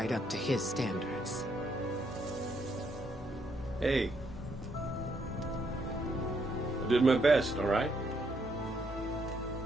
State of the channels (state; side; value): normal; both; correlation 0.74